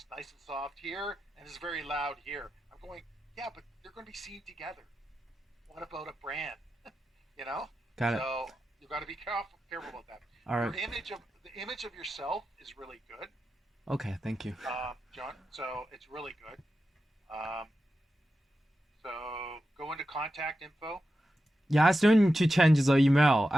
nice and soft here, and it's very loud here. I'm going, yeah, but they're going to be seen together. What about a brand? you know. Got it. So you've got to be careful about that. All right. Your image of the image of yourself is really good, Okay. Thank you. John. So it's really good. Um, so go into contact info. Yeah, I still need to change the email.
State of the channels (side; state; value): both; normal; correlation 0.91